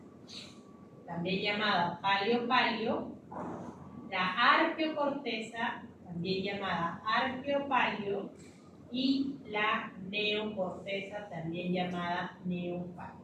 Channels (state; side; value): identical; both; correlation 1.00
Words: también llamada palio-palio, la arqueocorteza, también llamada arqueopalio, y la neocorteza, también llamada neopalio.